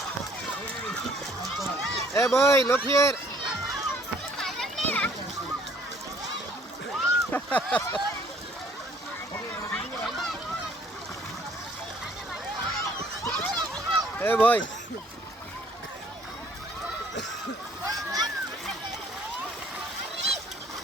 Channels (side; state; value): both; normal; correlation 0.59